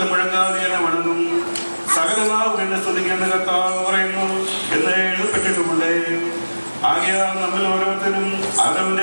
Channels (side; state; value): both; inverted; correlation -1.00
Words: മുഴങ്ങാതെ എന്നെ വണങ്ങും, സകല നാവും എന്നെ സ്തുതിക്കുന്ന കർത്താവ് പറയുന്നു എന്ന് എഴുതപ്പെട്ടിട്ടുമുണ്ട്. ആകയാൽ നമ്മൾ ഓരോരുത്തരും